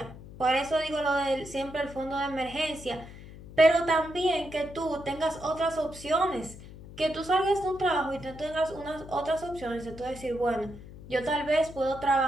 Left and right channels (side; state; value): left; noise; hum, 16 dB below the sound